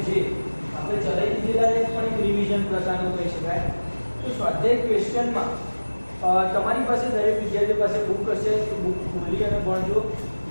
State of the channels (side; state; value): both; inverted; correlation -1.00